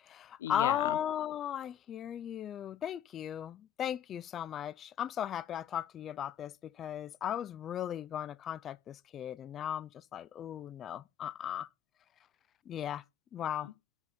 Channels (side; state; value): right; quieter; 9.9 dB